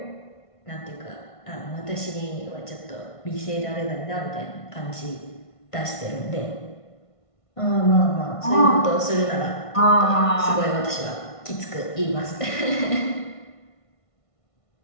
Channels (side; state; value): right; late; 1.5 ms